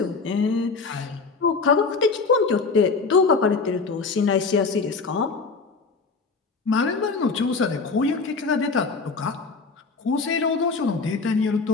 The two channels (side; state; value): right; quieter; 4.4 dB